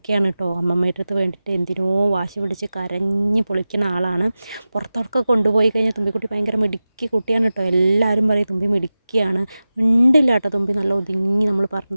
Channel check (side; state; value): both; inverted; correlation -0.95